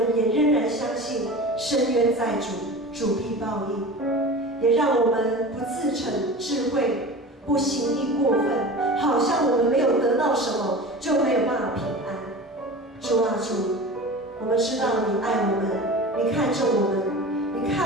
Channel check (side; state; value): both; normal; correlation 0.34